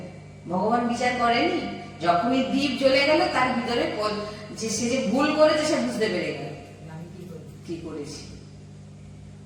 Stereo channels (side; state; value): both; identical; correlation 1.00